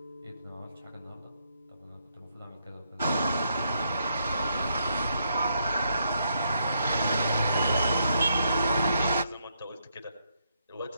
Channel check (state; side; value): inverted; both; correlation -0.77